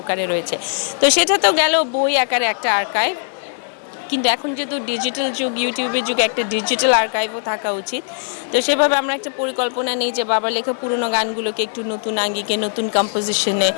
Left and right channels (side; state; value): right; silent; 66 dB below the other